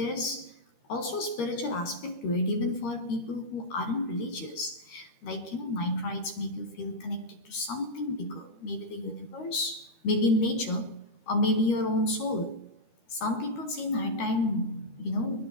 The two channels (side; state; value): right; late; 13 ms